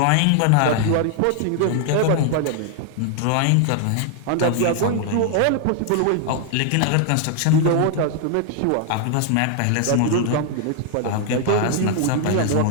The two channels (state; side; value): different; both; correlation 0.00